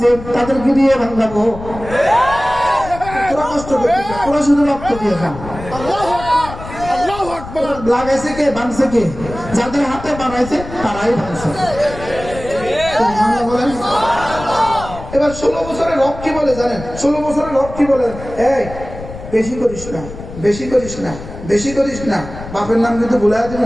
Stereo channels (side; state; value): left; noise; rumble, 12 dB below the sound